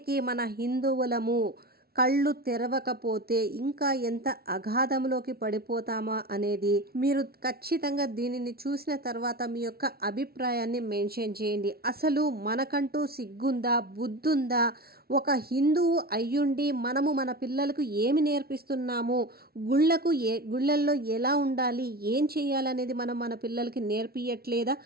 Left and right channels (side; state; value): left; late; 0.44 ms